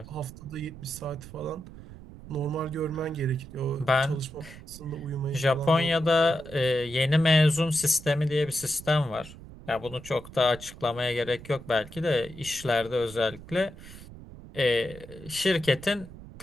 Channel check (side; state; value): right; noise; rumble, 16 dB below the sound